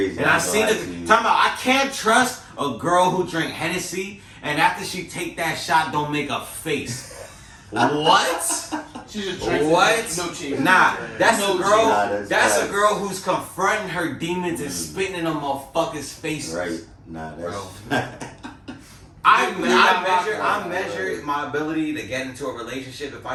And I seen it. Talking about, I can't trust a girl who drink Hennessy and after she take that shot, don't make a face. What? She just drinks What? no cheese. Nah, that's No a girl. Nah, that's a facts. girl who's confronting her demons and spitting in them motherfuckers' faces. Right. Nah, that's. I measure my ability to get into a relationship. If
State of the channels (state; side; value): identical; both; correlation 1.00